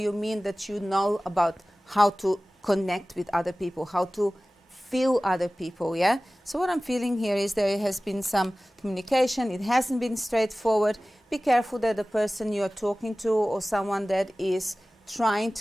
mean that you know about how to connect with other people, how to feel other people, yeah? So what I'm feeling here is there has been some communication. It hasn't been straightforward. Be careful that the person you're talking to or someone that is trying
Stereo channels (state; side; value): normal; both; correlation 0.97